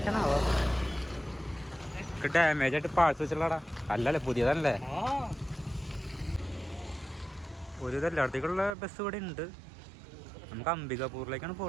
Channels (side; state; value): left; drops out; at 8.8 s